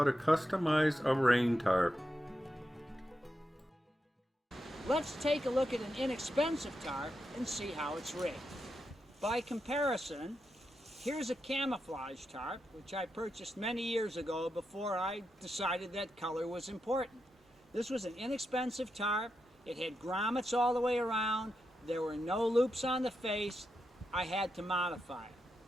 to customize a rain tarp. Let's take a look at an inexpensive tarp and see how it's rigged. By comparison, here's a camouflage tarp, which I purchased many years ago before I decided that color was important. This was an inexpensive tarp. It had grommets all the way around. There were no loops on the face. I had to modify it.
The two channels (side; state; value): both; normal; correlation 0.86